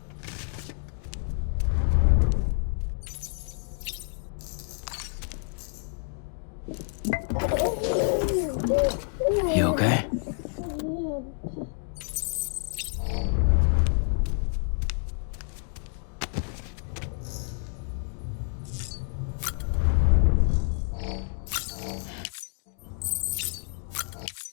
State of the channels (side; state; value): right; silent; 59 dB below the other